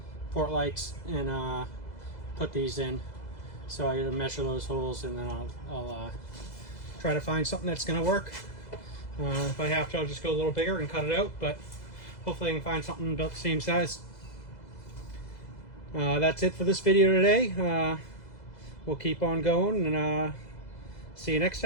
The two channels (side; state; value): right; late; 2.0 ms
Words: port lights and put these in. So I gotta measure those holes, and then I'll try to find something that's gonna work. If I have to, I'll just go a little bigger and cut it out, but hopefully I can find something about the same size. That's it for this video today. We'll keep on going, and see you next